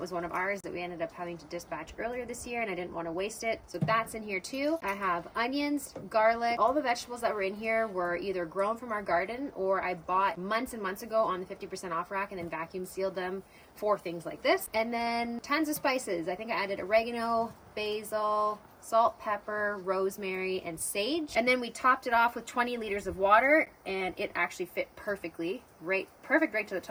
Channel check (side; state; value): both; identical; correlation 1.00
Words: was one of ours that we ended up having to dispatch earlier this year, and I didn't want to waste it. So that's in here too. I have onions, garlic. All the vegetables that were in here were either grown from our garden or I bought months and months ago on the 50% off rack and then vacuum sealed them for things like this. And then tons of spices. I think I added oregano, basil, salt, pepper, rosemary, and sage. And then we topped it off with 20 liters of water, and it actually fit perfectly, perfect right to the